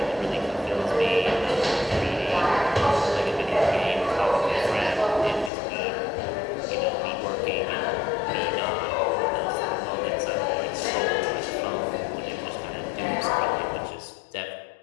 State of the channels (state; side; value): drops out; right; at 5.5 s